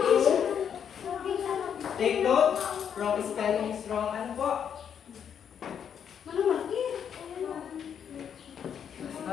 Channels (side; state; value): right; quieter; 8.1 dB